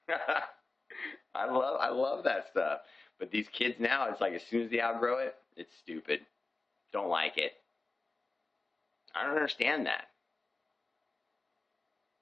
I love that stuff. But these kids now, it's like as soon as they outgrow it, it's stupid. Don't like it. I don't understand that.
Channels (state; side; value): quieter; right; 3.4 dB